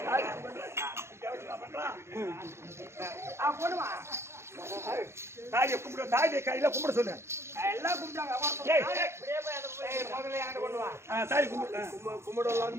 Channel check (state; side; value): late; left; 0.13 ms